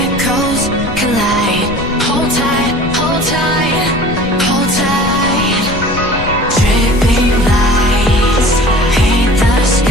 collide. Hold tight, hold tight, hold tight. Dripping lights paint the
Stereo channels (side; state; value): left; noise; rumble, 9 dB below the sound